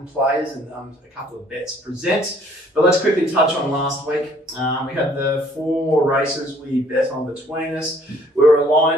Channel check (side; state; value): both; normal; correlation 0.60